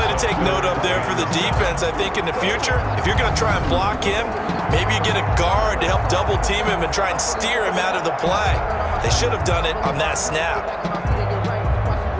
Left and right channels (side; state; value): both; identical; correlation 1.00